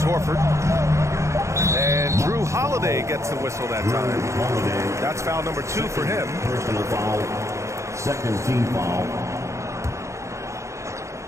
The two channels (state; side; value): late; left; 0.14 ms